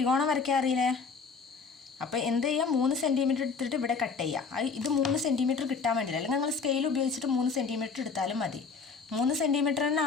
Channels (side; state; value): right; quieter; 5.1 dB